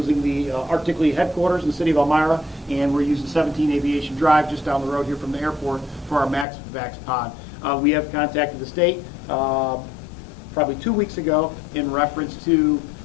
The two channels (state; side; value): drops out; right; at 6.5 s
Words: the Arctic Lee headquarters in the city of Elmira, and we're using 17 Aviation Drive just down the road here from the airport for our Max Vax pod. We have contacted the state probably 2 weeks ago in reference to